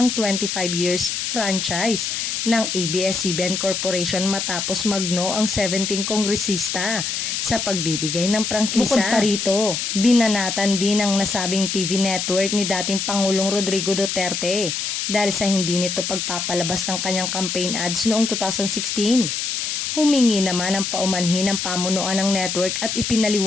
25 years franchise ng ABS-CBN Corporation matapos magno ang 17 kongresista sa pagbibigay ng prangkisa. Bukod pa rito, binanatan din ang nasabing TV network ni dating Pangulong Rodrigo Duterte dahil sa hindi nito pagpapalabas ng kanyang campaign ads noong 2016. Humingi naman ang paumanhin ng pamunuan ng network at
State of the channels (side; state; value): left; noise; hiss, 2 dB below the sound